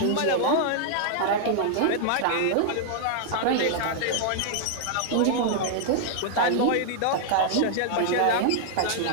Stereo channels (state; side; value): different; both; correlation -0.01